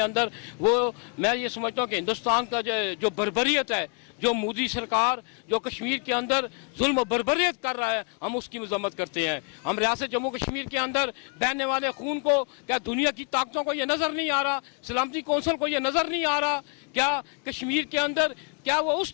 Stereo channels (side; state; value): right; quieter; 37.6 dB